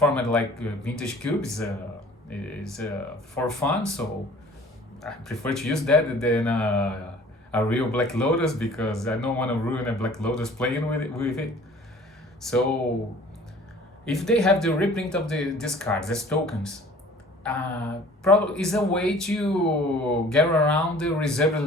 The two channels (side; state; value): both; normal; correlation 0.49